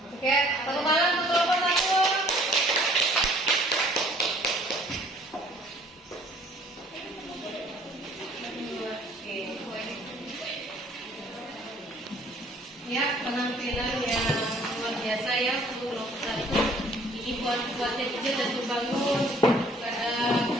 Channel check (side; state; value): both; normal; correlation 0.57